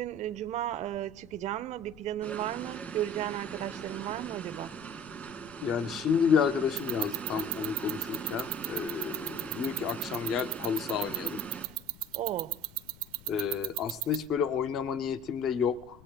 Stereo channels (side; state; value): left; noise; rumble, 23 dB below the sound